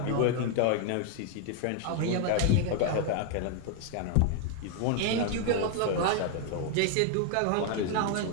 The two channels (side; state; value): both; different; correlation 0.00